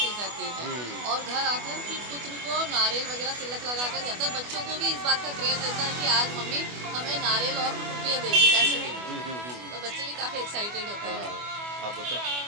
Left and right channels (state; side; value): late; left; 24 ms